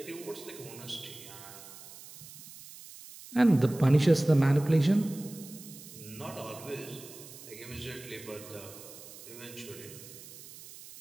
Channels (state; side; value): noise; right; hiss, 16 dB below the sound